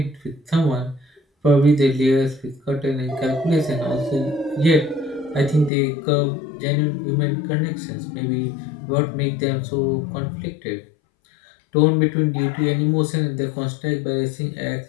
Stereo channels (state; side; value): drops out; right; at 5.7 s